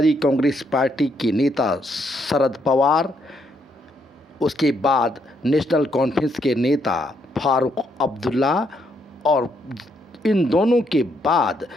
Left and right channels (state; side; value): normal; both; correlation 0.74